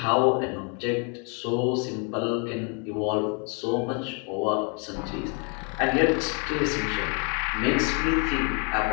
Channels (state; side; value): quieter; right; 36.4 dB